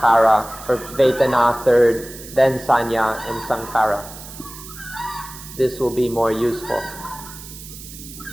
or Vedana third, then Sanya and Sankhara. This will be more useful.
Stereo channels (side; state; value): right; noise; hiss, 15 dB below the sound